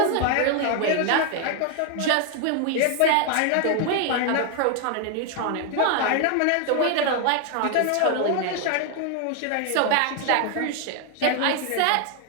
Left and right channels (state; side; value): different; both; correlation 0.00